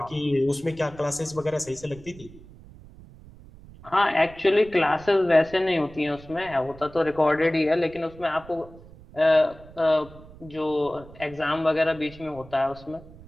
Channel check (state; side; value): noise; right; rumble, 20 dB below the sound